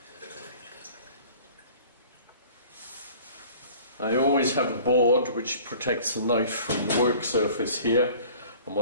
I always have a board which protects the knife from the work surface here, and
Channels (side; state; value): both; inverted; correlation -0.48